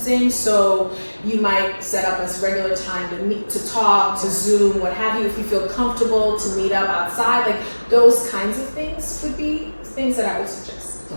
so you might set up a regular time to meet, to talk, to Zoom, what have you, if you feel comfortable, to meet up outside. Like those kinds of things would be things that I would suggest.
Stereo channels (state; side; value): inverted; both; correlation -1.00